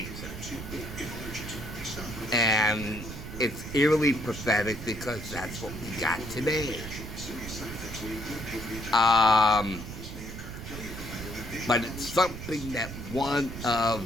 And it's eerily prophetic because that's what we got today. But it's something that one of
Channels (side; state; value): right; noise; rumble, 9 dB below the sound